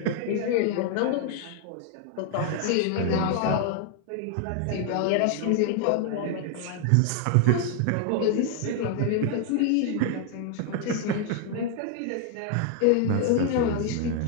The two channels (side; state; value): both; different; correlation 0.00